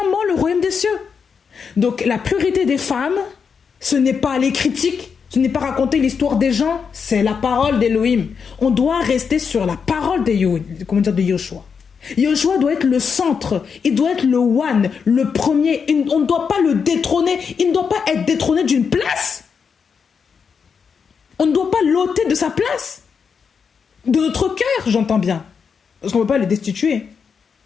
le royaume des cieux. Donc la priorité des femmes, ce n'est pas les critiques, ce n'est pas raconter l'histoire des gens, c'est la parole d'Élohim. On doit rester sur la parole de Yehoshua. Yehoshua doit être le centre, il doit être le one, le premier. On ne doit pas le détrôner, il ne doit pas être détrôné d'une place. On ne doit pas l'ôter de sa place. De notre cœur, j'entends bien. Parce qu'on ne peut pas le destituer.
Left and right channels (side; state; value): right; quieter; 6.1 dB